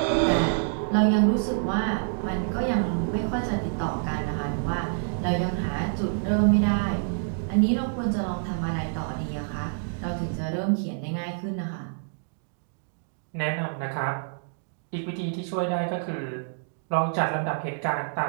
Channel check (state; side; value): silent; left; digital silence